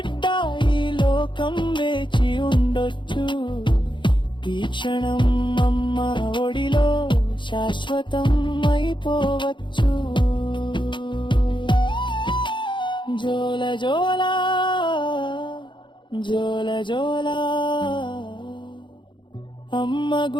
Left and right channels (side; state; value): right; late; 0.23 ms